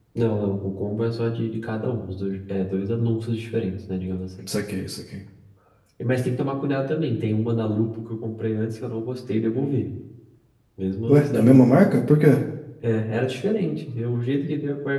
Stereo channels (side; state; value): both; identical; correlation 1.00